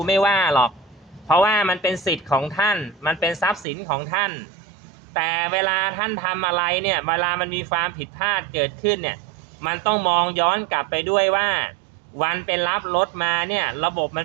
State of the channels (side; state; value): left; drops out; at 3.7 s